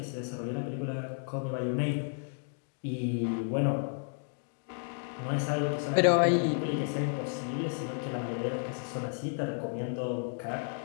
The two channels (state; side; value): silent; right; 56 dB below the other